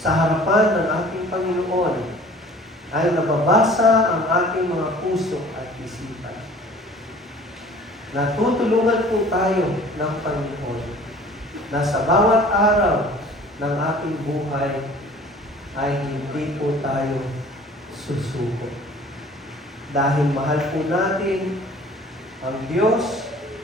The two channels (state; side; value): normal; both; correlation 0.49